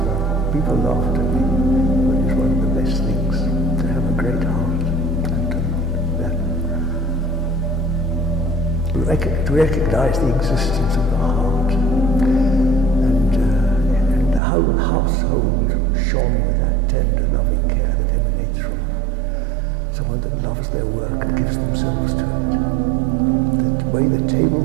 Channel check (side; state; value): left; drops out; at 14.4 s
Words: People laughed at me, but it's one of the best things to have a great heart. To recognize the existence of the heart, and the whole household shone with that tender, loving care that emanates from someone that loves their work and gives themselves to it. The way the table